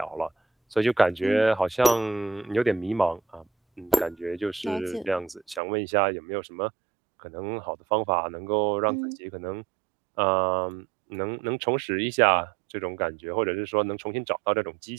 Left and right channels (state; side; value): drops out; left; at 5.6 s